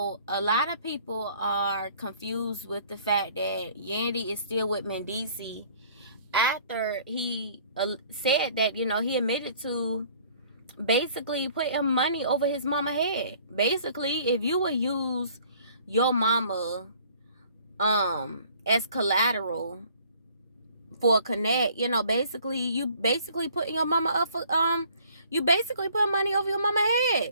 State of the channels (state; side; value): inverted; both; correlation -0.56